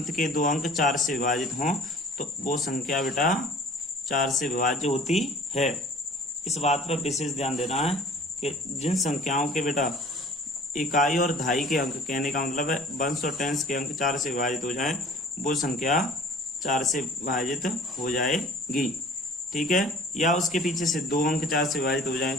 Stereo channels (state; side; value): normal; both; correlation 0.48